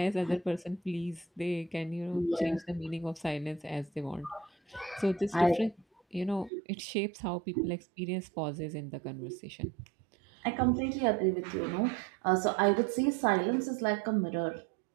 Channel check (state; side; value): drops out; left; at 6.5 s